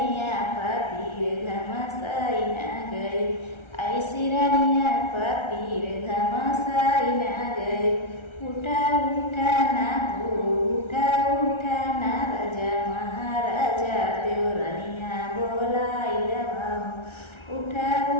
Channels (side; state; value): right; late; 1.3 ms